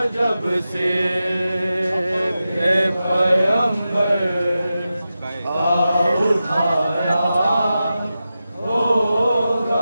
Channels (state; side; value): inverted; both; correlation -0.92